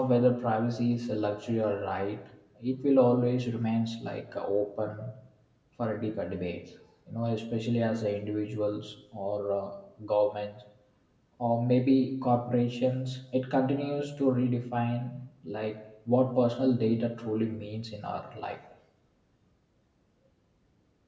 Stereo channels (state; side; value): identical; both; correlation 1.00